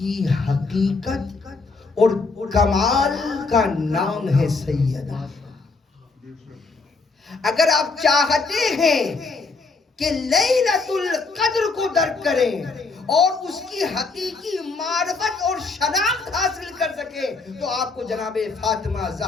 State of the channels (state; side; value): quieter; right; 4.1 dB